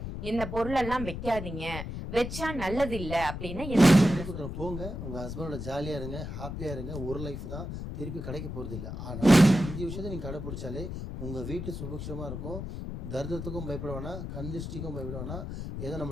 இந்த பொருளெல்லாம் வைக்காதீங்க, வச்சா நல்லது இல்ல அப்படின்னு என்ன போங்க. உங்க ஹஸ்பண்டோட ஜாலியா இருங்க, ஹாப்பியா இருங்க. ஒரு லைஃப் தான், திருப்பி கிடைக்க போறது இல்லை. ஆனா 5 விஷயத்தை நீங்க கடைபிடிச்சாலே உங்க வீட்டு சுபிக்ஷமா இருக்கும். தரித்திரத்துக்கும் பயப்பட வேணாம், கந்திஷ்டிக்கும் பயப்பட வேணாம். ஏதோ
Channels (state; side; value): noise; left; rumble, 6 dB below the sound